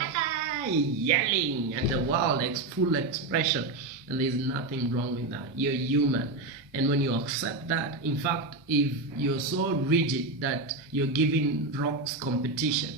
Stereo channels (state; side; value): quieter; left; 3.2 dB